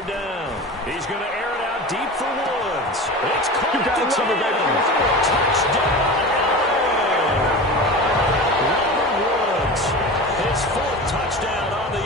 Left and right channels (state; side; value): normal; both; correlation 0.31